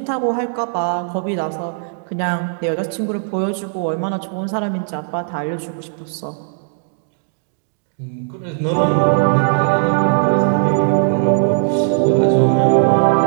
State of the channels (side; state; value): left; silent; digital silence